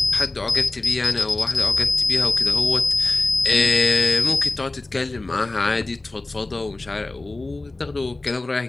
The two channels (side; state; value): right; quieter; 3.0 dB